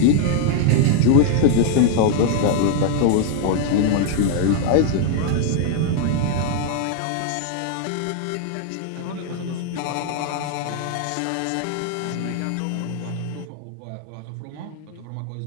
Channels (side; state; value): both; different; correlation 0.00